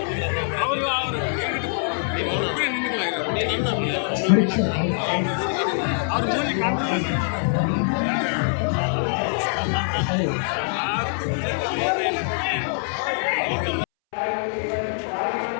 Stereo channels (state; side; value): silent; right; 63 dB below the other